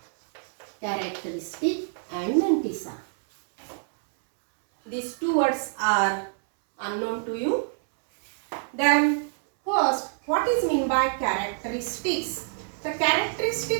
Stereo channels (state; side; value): silent; left; 61 dB below the other